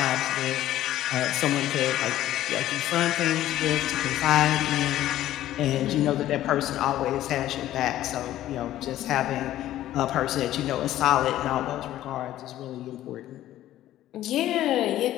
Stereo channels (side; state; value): right; quieter; 13.5 dB